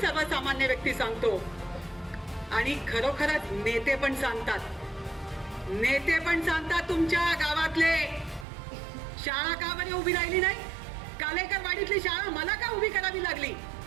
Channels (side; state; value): left; drops out; at 8.5 s